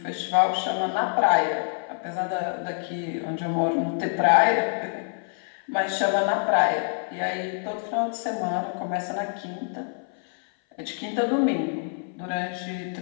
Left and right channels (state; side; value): silent; right; 56 dB below the other